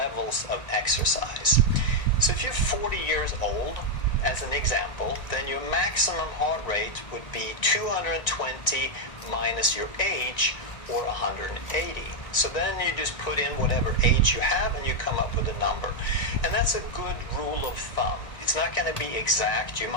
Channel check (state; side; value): late; right; 1.9 ms